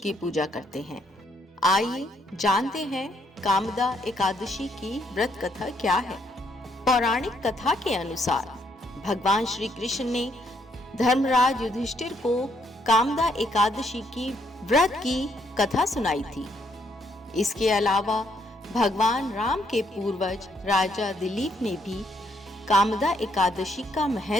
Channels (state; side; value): normal; both; correlation 0.71